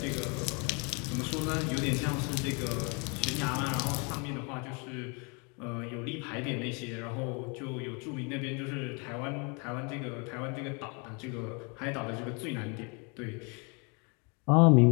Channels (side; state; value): right; quieter; 33.1 dB